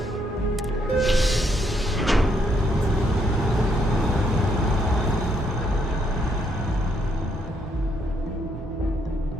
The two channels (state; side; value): normal; both; correlation 0.73